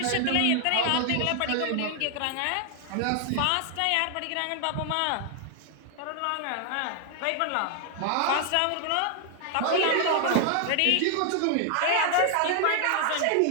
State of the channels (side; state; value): both; different; correlation 0.00